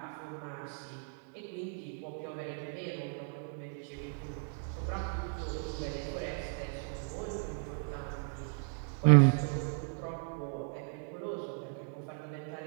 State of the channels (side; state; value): left; silent; 54 dB below the other